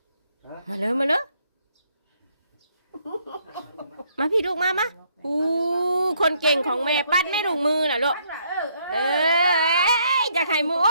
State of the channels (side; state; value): both; inverted; correlation -0.70